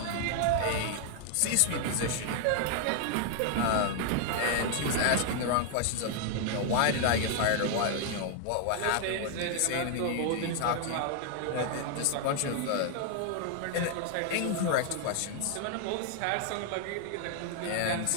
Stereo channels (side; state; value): both; different; correlation 0.00